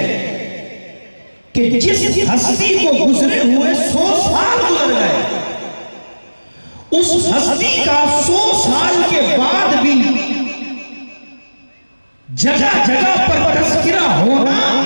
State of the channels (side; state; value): both; inverted; correlation -1.00